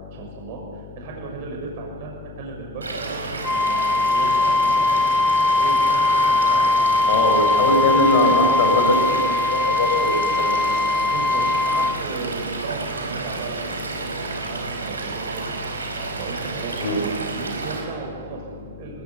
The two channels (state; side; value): noise; left; hum, 18 dB below the sound